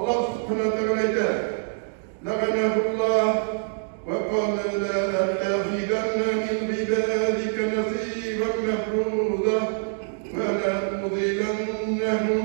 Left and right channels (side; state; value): left; silent; digital silence